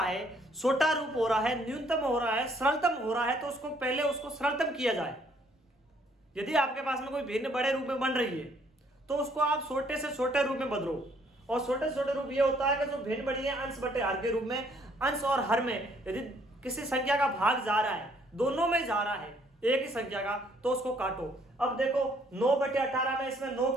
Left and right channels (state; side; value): normal; both; correlation 0.65